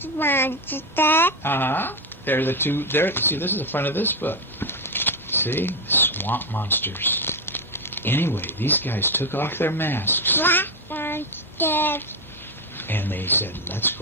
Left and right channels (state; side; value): normal; both; correlation 0.09